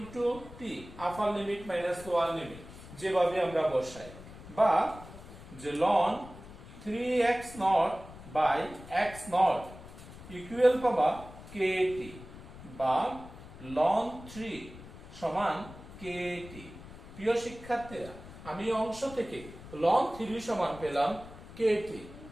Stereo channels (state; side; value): noise; left; rumble, 16 dB below the sound